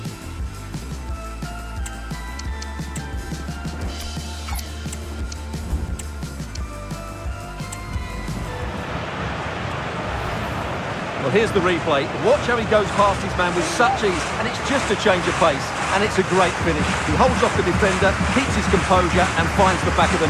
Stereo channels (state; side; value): identical; both; correlation 1.00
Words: Well, here's the replay. Watch how he goes past his man with such ease, and it's just a change of pace, and it's a great finish. He holds off the defender, keeps his composure, and finds the back of the